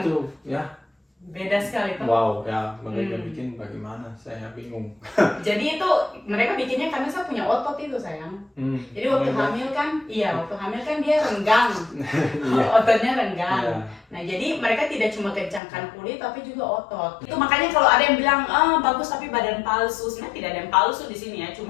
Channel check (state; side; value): drops out; right; at 15.6 s